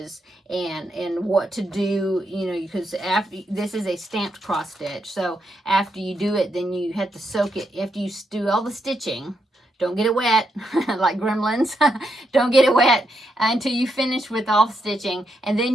and what to do, you know, because after this is a stamped cross stitch. So after you do it, then you have to soak it. After you do all the stitching, don't get it wet, like gremlins. Don't get it wet until you finish with all the stitching. And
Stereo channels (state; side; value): normal; both; correlation 0.81